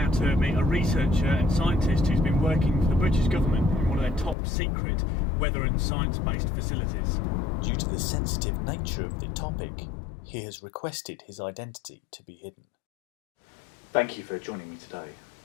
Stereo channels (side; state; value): right; drops out; at 4.4 s